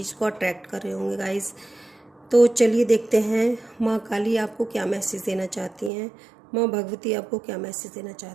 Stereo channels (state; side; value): drops out; left; at 5.9 s